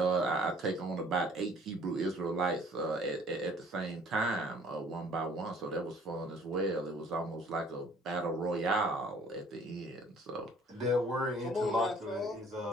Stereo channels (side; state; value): both; normal; correlation 0.55